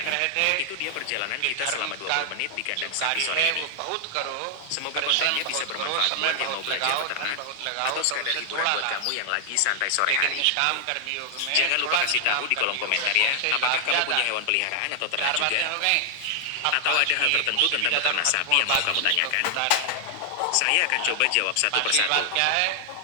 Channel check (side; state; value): both; different; correlation 0.00